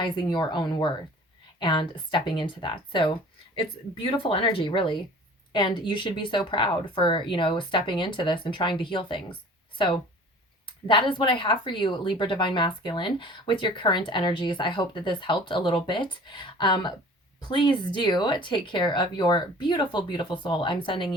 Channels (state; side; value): normal; both; correlation 0.46